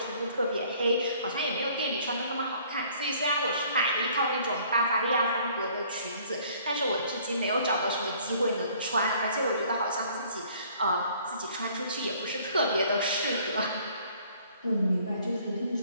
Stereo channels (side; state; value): both; inverted; correlation -0.57